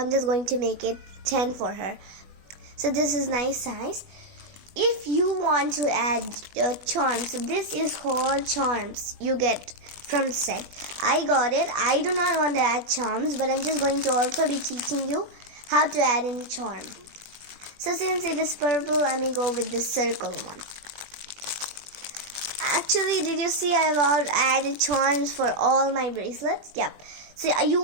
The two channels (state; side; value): late; left; 20 ms